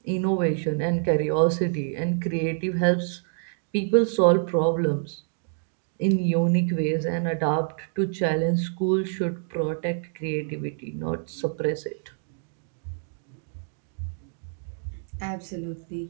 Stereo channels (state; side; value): silent; left; 60 dB below the other